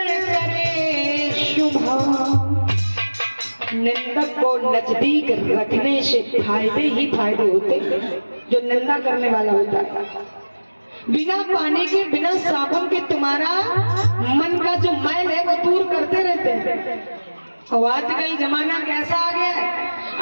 करे शुभा। निंदक को नजदीक रखने से फायदे ही फायदे होते, जो निंदा करने वाला होता है। बिना पानी के, बिना साबुन के तुम्हारा मन का जो मैल है वो दूर करते रहते हैं। और आजकल जमाना कैसा आ गया है,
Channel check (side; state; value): both; inverted; correlation -1.00